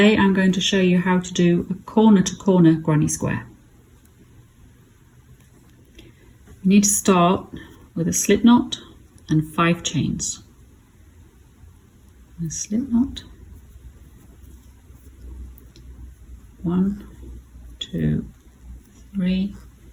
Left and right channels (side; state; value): both; identical; correlation 1.00